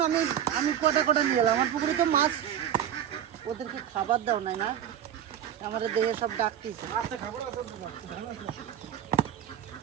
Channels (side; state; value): left; quieter; 10.0 dB